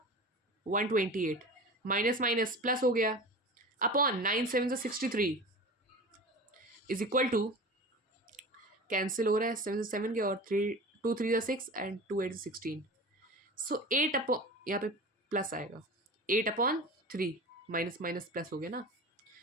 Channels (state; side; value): normal; both; correlation 0.34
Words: 128 माइनस माइनस प्लस हो गया, upon 9 7 63 is equal to, cancel हो रहा है 7 7 के और 3 2 3 6 एंड 2 8 16, सो 8 अपॉन, यहाँ पे प्लस आएगा 8/3 माइनस माइनस प्लस हो गया ना,